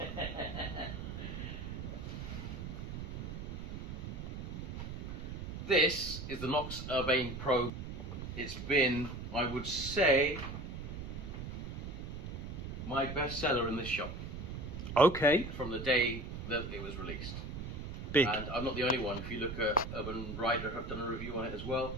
This is the Knox Urbane Pro. It's been, I would say, my best seller in this shop. Okay. From the day that it was released. Big. And I'm not the only one. If you look at Urbane Rider, have done a review on it as well.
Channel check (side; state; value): right; noise; rumble, 7 dB below the sound